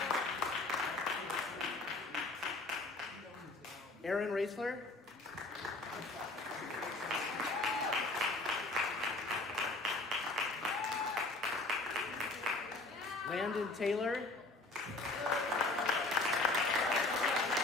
Aaron Raisler. Landon Taylor.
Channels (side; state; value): right; quieter; 3.0 dB